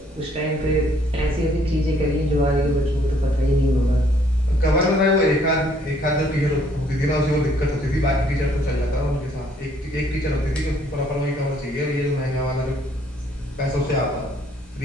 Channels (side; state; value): both; normal; correlation 0.64